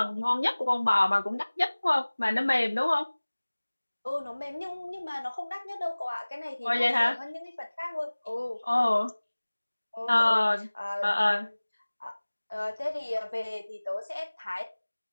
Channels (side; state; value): both; inverted; correlation -1.00